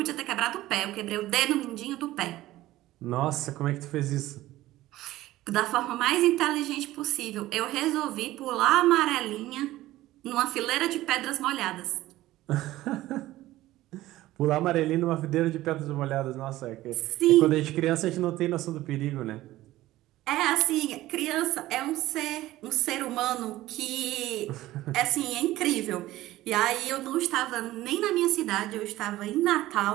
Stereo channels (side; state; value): left; quieter; 16.1 dB